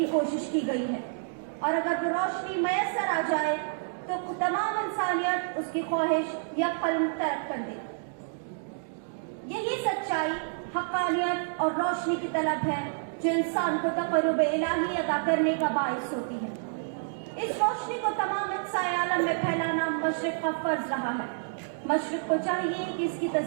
कोशिश की गई है, और अगर वो रोशनी मैसर आ जाए तो तमाम इंसानियत उसकी ख्वाहिश या कल्म तर्क कर दे। यही सच्चाई, हक़ानियत और रोशनी की तलब है जो इंसान को तक़र्रुब इलाही अदा करने का बाइस होती है। इस रोशनी को तमाम अक़साए आलम में फैलाना मशरिक़ का फर्ज रहा है। मशरिक़ को चाहिए कि इसकी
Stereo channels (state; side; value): silent; left; digital silence